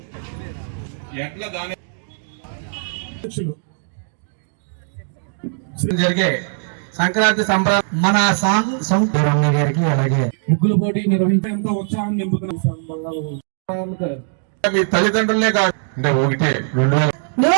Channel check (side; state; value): left; silent; digital silence